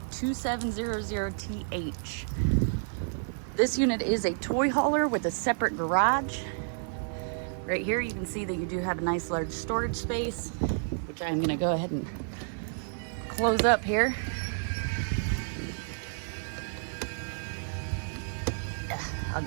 This unit is a toy hauler with a separate garage. Right here you can see that you do have a nice large storage space, which I'm going to go ahead and close up here. I'll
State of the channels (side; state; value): left; silent; digital silence